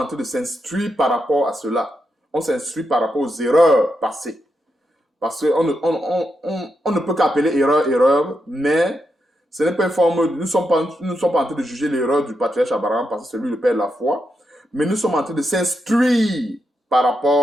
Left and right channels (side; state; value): both; normal; correlation 0.84